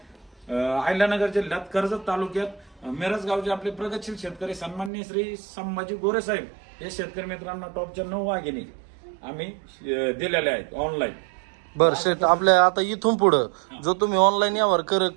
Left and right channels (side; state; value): left; drops out; at 4.9 s